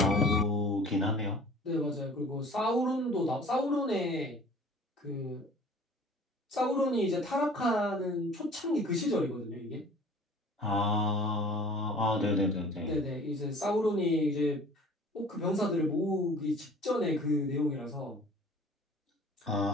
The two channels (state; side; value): normal; both; correlation 0.47